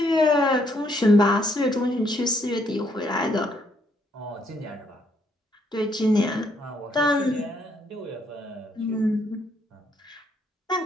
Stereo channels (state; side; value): normal; both; correlation 0.71